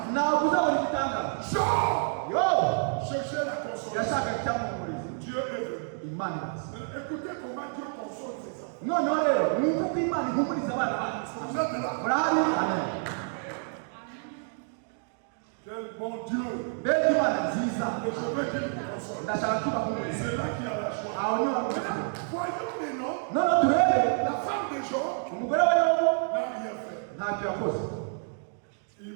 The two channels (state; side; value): silent; left; 59 dB below the other